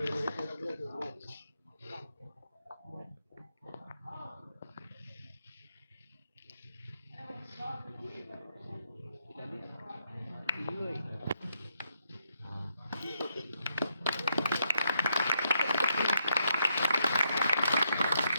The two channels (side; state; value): both; inverted; correlation -0.78